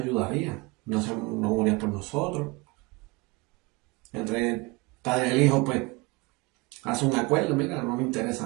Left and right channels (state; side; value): quieter; left; 25.0 dB